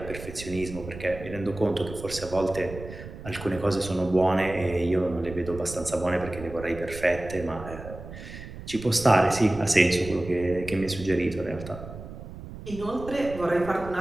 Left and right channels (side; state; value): right; noise; rumble, 13 dB below the sound